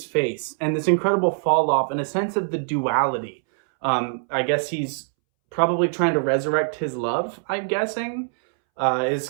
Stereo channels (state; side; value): silent; left; 63 dB below the other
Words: face and this incredible fall off and a sense of the duality. I guess he's probably trying to resurrect his love, I'm guessing, is